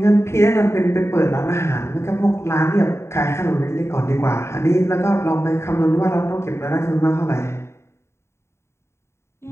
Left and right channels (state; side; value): late; right; 0.13 ms